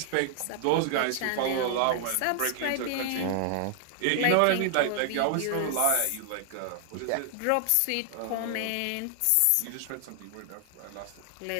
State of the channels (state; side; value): different; both; correlation 0.00